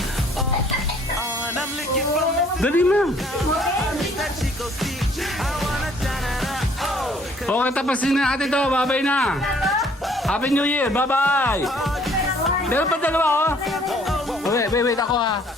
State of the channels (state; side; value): normal; both; correlation 0.60